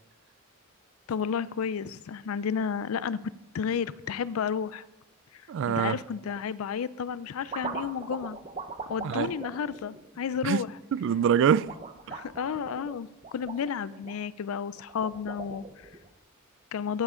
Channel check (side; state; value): both; normal; correlation 0.02